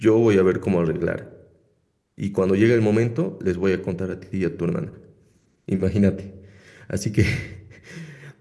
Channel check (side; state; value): both; identical; correlation 1.00